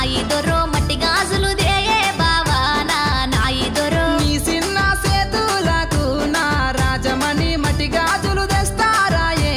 ఇద్దరు మట్టి గాజులు దేయే బావా నా ఇద్దరు నీ చిన్న సేతులకు నా రాజమణి మట్టి గాజులు తెస్తారాయే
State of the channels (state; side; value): identical; both; correlation 1.00